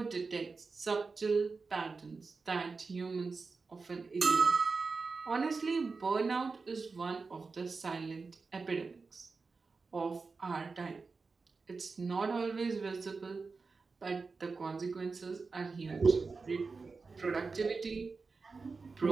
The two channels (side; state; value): left; quieter; 4.4 dB